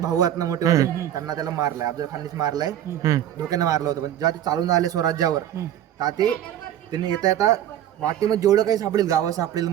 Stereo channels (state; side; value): quieter; left; 11.3 dB